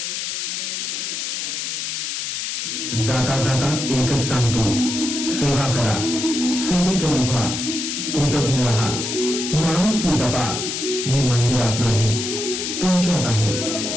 जाता जाता एकच सांगतो, सेवा करा, सेवेकरी व्हा, कृतज्ञ राहा, माणुसकी जपा. मी मंदिरात नाही, तुमच्यात आहे.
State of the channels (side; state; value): left; noise; hiss, 3 dB below the sound